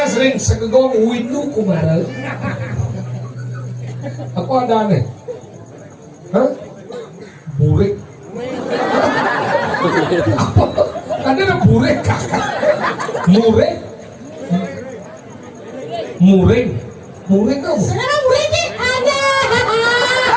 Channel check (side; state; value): both; identical; correlation 1.00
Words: sering segegong windu kumaral. Aku ada aneh. Hah? Burik. Apa? Ada burik kakak. Muring. Muring. Muring apa? Sekarang murid ni ada.